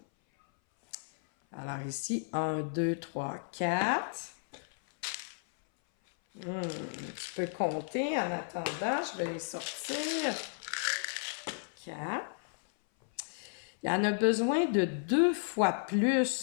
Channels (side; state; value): right; silent; 56 dB below the other